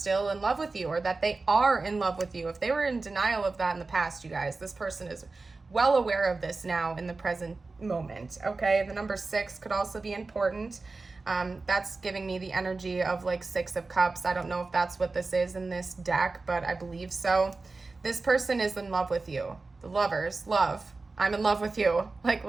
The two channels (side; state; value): left; quieter; 3.7 dB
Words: in love with you, or that they are in love with you. If they were in denial of that in the past, you guys, this person is well aware of this now in the present moment. Okay, the number 6 could also be important. That's giving me the energy of like 6 of Cups. I don't know if that's what this is in this deck, but I believe so. This person is in love with you. The Lovers, love. I'm in love with you. Like